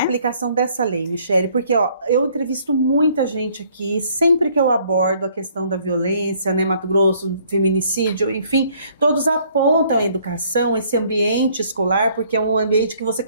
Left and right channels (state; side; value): inverted; both; correlation -0.62